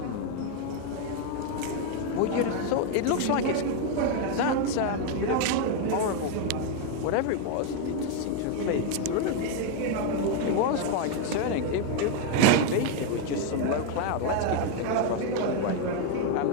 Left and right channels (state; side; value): different; both; correlation 0.01